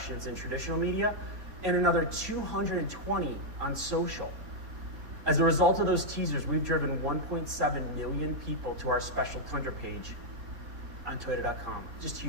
in traditional media and another 220 on social. As a result of those teasers, we've driven 1.7 million people to our special Tundra page on Toyota.com. Just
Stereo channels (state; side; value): late; left; 4.2 ms